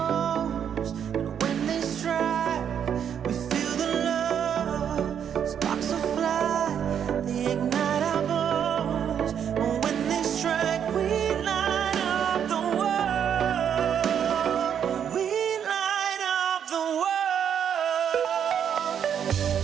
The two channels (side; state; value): left; quieter; 8.5 dB